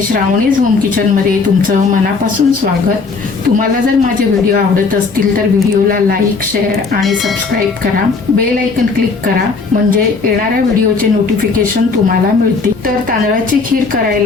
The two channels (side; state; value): right; quieter; 4.5 dB